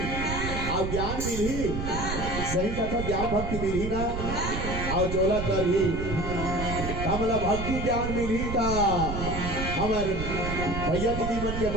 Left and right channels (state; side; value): noise; right; rumble, 4 dB below the sound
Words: और ज्ञान मिली सही कथा ज्ञान भक्ति मिली ना और चोला कर ही हमला भक्ति ज्ञान मिली था हमार भैया दीदी मन के